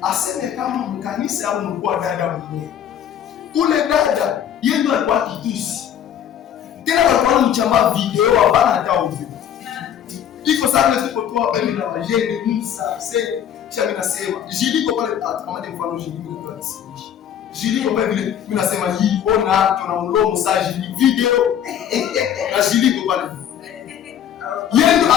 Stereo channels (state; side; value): quieter; right; 9.6 dB